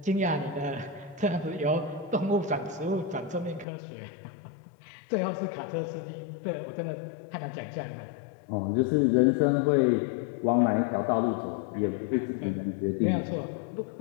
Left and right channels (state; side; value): drops out; right; at 3.7 s